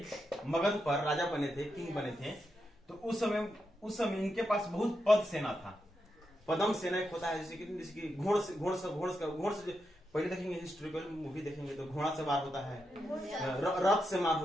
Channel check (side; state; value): both; normal; correlation 0.85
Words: मगध पर, राजा बने थे, किंग बने थे, तो उस समय इनके पास बहुत पद सेना था। पदम सेना एक होता है, जैसे कि घोड़ से पहले देखेंगे, हिस्टोरिकल मूवी देखेंगे तो घोड़ा से मार होता है, रथ से मार